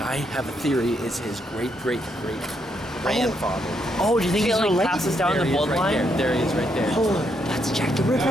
have a theory is his great-great-great grandfather. Oh, do you think it like passes down the bloodline? There he is right there. Oh, that's Jack the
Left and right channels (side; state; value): both; normal; correlation 0.77